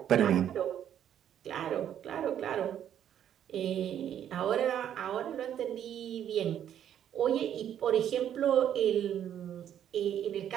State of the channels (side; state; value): left; quieter; 10.0 dB